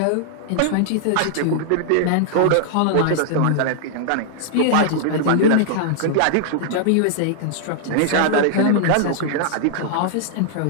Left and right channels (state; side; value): different; both; correlation -0.01